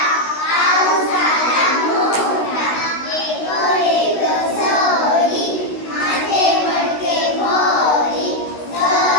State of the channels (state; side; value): late; right; 16 ms